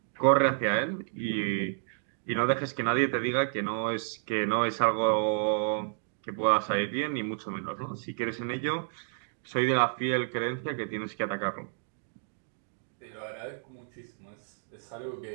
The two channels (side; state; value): left; silent; digital silence